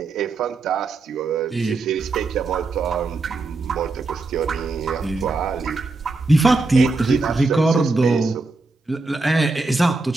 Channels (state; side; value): quieter; left; 3.5 dB